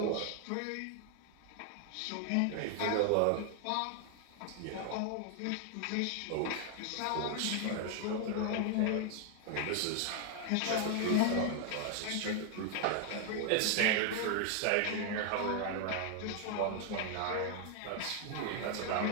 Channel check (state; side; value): different; both; correlation 0.00